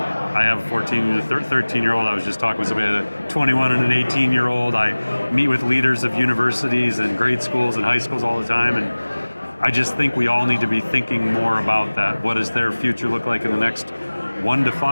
have a 14 to 13-year-old. I was just talking with somebody, a 21 and an 18-year-old. I meet with leaders of universities and grade schools and high schools all the time, and I just think we all need to be thinking more about that. What does their future look like in the next 1 to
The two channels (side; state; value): both; inverted; correlation -1.00